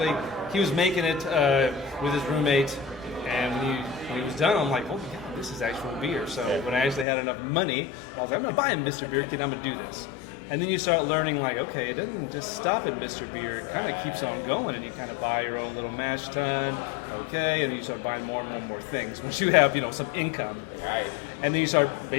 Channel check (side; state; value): right; drops out; at 7.1 s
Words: he was making it with his roommate. And when he was done, I'm like, oh my God, this is actual beer. So when I actually had enough money, I was like, I'm going to buy a Mr. Beer kit. I'm going to do this. And then you start learning, like, okay, it doesn't just stop at Mr. Beer. It kind of keeps on going, and you kind of buy your own little mash tun, okay, and then you start buying more and more things once you have, some income. Right. And then you start